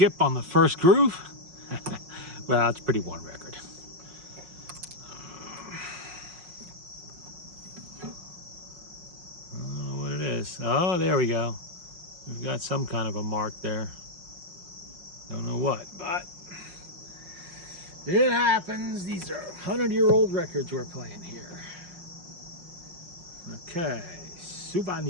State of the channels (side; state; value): left; late; 5.5 ms